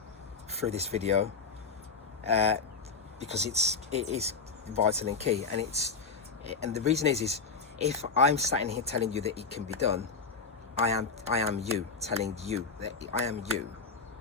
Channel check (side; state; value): right; quieter; 4.8 dB